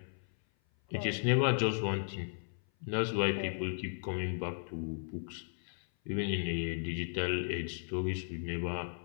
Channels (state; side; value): silent; right; 54 dB below the other